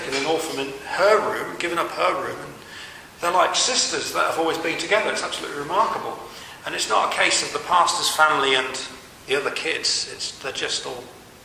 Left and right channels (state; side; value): identical; both; correlation 1.00